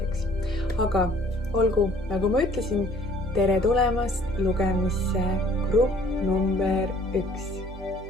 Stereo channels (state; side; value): normal; both; correlation 0.57